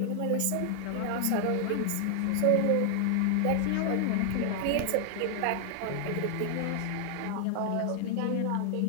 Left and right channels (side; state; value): both; different; correlation 0.00